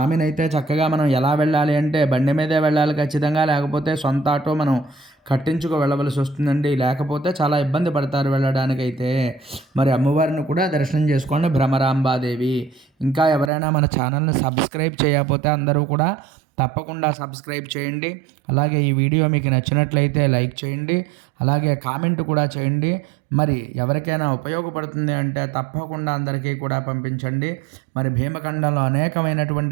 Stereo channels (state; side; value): drops out; left; at 13.5 s